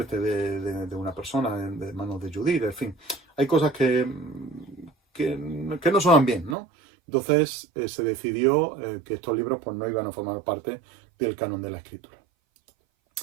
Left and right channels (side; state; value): left; drops out; at 6.6 s